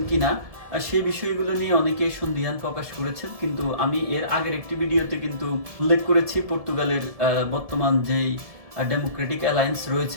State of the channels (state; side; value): late; left; 1.7 ms